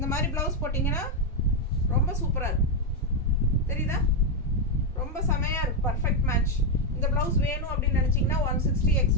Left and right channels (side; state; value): both; normal; correlation 0.04